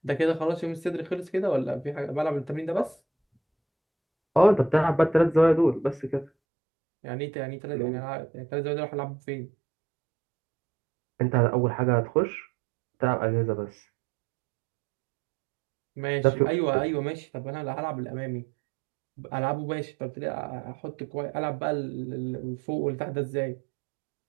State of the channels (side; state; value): left; drops out; at 6.3 s